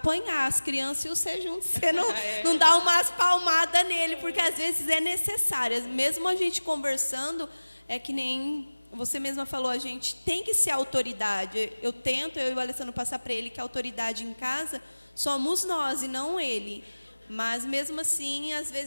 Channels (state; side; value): inverted; both; correlation -1.00